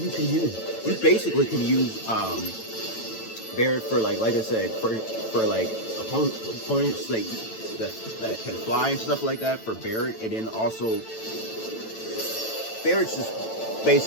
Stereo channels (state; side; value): late; right; 9.0 ms